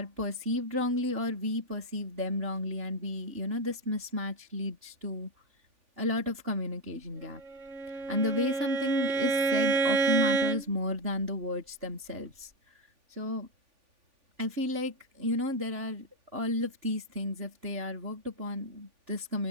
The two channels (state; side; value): late; left; 3.5 ms